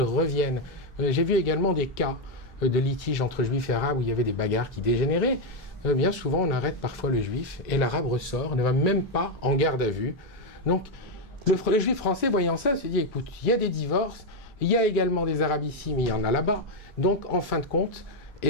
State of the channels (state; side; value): normal; both; correlation 0.04